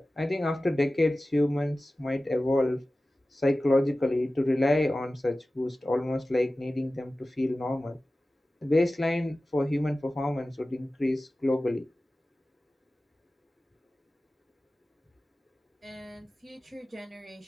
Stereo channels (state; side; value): normal; both; correlation 0.96